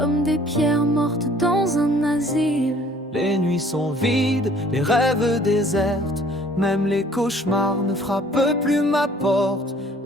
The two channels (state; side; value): normal; both; correlation 0.55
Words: des pierres mortes dans un asile. Les nuits sont vides, les rêves désertes, même les cauchemars ne frappent plus ma porte.